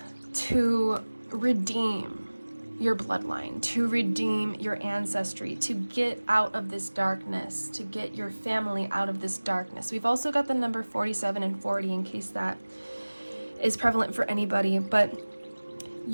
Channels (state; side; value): inverted; both; correlation -1.00